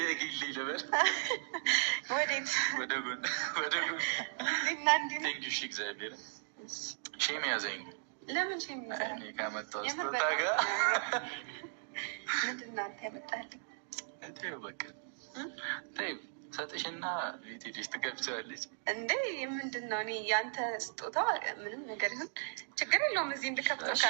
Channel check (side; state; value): left; silent; digital silence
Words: ልበል። ወዴት? ወደ ጎን እና እንዲህ ነው። ቴንኪው እግዚአብሔር ሼም ያዘኝ። ለምን ሼም ያዘኝ? እኔ ካመጣው ስጦታ ጋር ምንድን ነው አንተ ያመጣልኝ? ተይው በቃ ተይው ሰጥሽና ቤት ሄደሽ ትገብቻለች እንዴ? ምንድን ነው? እኔ ያንተ ስጦታ ምንም ነገር ይሁን ችግር የለውም። እዚህ እንድከፍተው